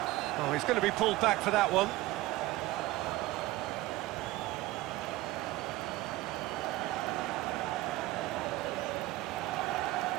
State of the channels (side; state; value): left; quieter; 17.8 dB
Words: Oh, he's going to be pulled back for that one.